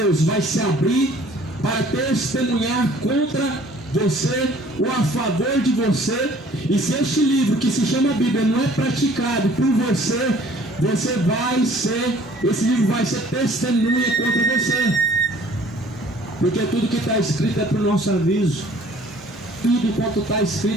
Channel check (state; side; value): normal; both; correlation 0.54